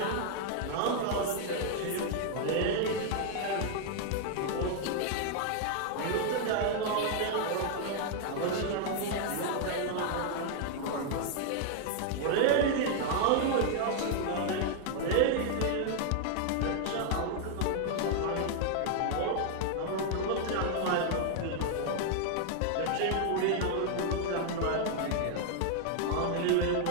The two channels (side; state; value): both; different; correlation 0.00